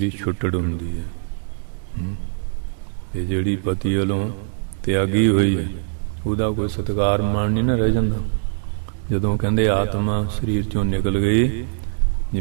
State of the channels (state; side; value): silent; left; 64 dB below the other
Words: ਛੁੱਟੜ ਹੁੰਦੀ ਹੈ। ਤੇ ਜਿਹੜੀ ਪਤੀ ਵੱਲੋਂ ਤਿਆਗੀ ਹੋਈ ਹੈ, ਉਹਦਾ ਕੋਈ ਸਤਿਕਾਰ ਮਾਣ ਨਹੀਂ ਨਾ ਰਹਿ ਜਾਂਦਾ। ਜਦੋਂ ਕਹਿੰਦੇ ਆਤਮਾ ਸਰੀਰ ਚੋਂ ਨਿਕਲ ਗਈ,